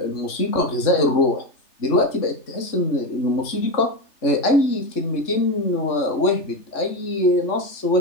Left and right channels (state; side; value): late; right; 3.3 ms